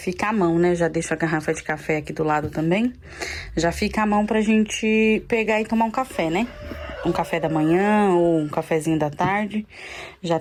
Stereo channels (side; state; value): both; identical; correlation 1.00